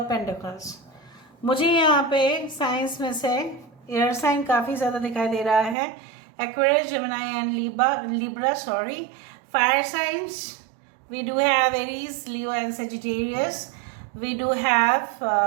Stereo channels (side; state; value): left; drops out; at 5.8 s